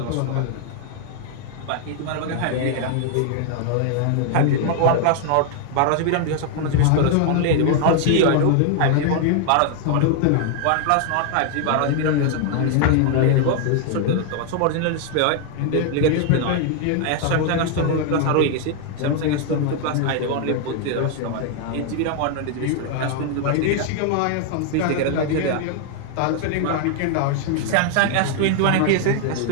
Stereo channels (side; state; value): both; different; correlation 0.00